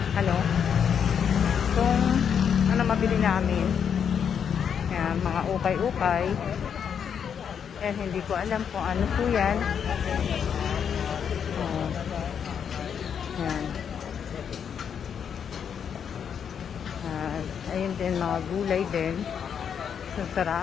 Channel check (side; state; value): right; quieter; 7.7 dB